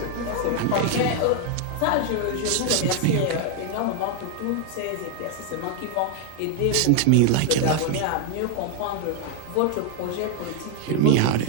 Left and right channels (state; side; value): different; both; correlation 0.00